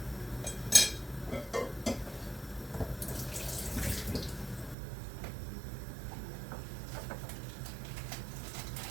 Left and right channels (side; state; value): left; drops out; at 4.8 s